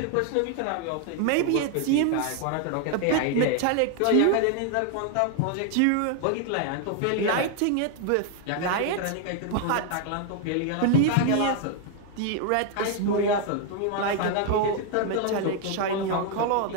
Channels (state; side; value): different; both; correlation 0.00